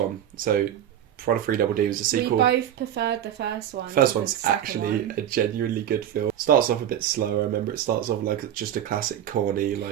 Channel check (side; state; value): left; quieter; 10.6 dB